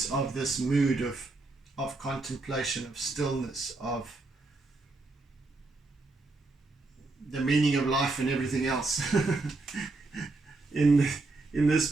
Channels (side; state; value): left; quieter; 3.4 dB